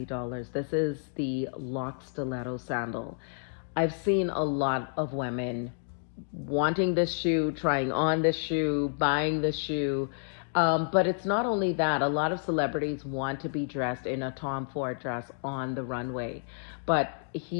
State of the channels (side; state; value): right; silent; digital silence